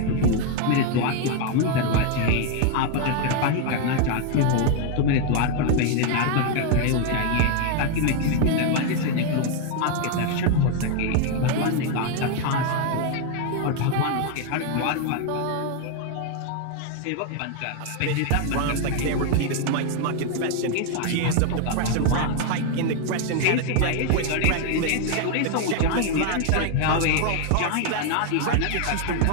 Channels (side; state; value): both; different; correlation 0.01